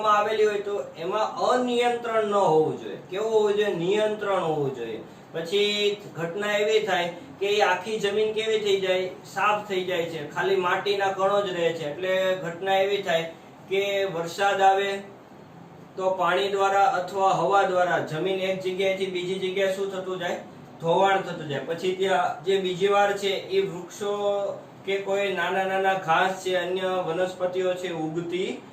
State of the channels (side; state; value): both; identical; correlation 1.00